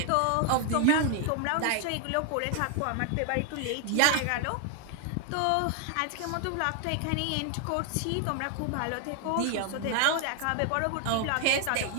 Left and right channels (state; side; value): different; both; correlation 0.00